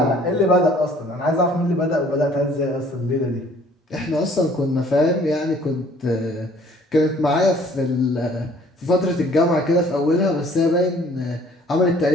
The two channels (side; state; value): both; normal; correlation 0.56